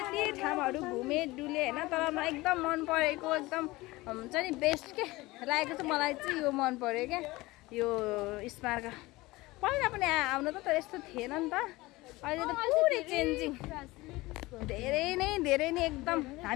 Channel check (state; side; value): quieter; right; 20.5 dB